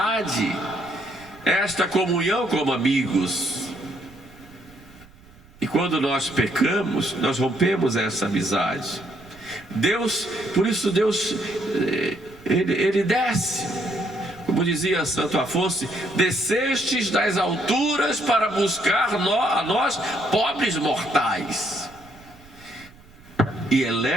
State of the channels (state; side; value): noise; right; rumble, 25 dB below the sound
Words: esta comunhão como amigos. E quando nós pecamos, nós rompemos essa amizade. Deus, por isso Deus, ele desce. Como dizia Santo Afonso: descestes das alturas para buscar a nós, pobres mortais, e